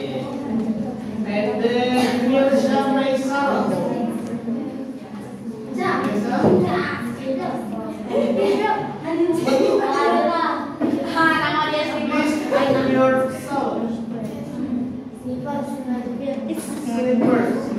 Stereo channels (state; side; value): identical; both; correlation 1.00